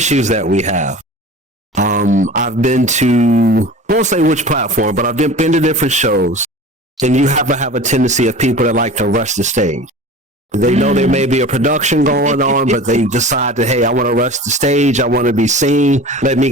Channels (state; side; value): normal; both; correlation 0.37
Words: that we have, I've been to, I won't say which platform, but I've been to different shows, and you have to have a tendency of people that like to rush the stage. They know there may be a production going on, but they decide that, hey, I want to rush the stage. I want to be seen. Let me